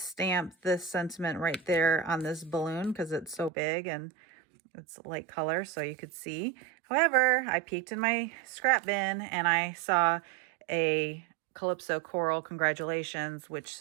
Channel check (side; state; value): left; drops out; at 3.5 s